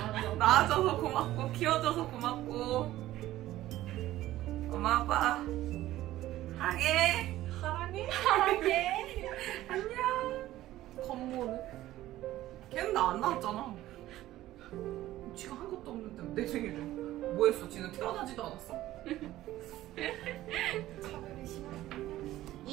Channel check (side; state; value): left; quieter; 15.0 dB